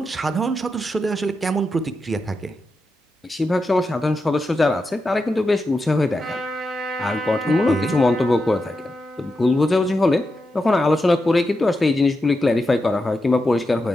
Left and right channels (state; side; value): normal; both; correlation 0.88